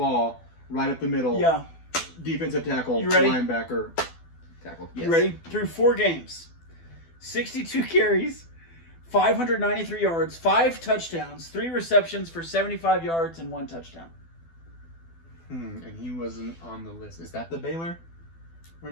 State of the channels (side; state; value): right; late; 12 ms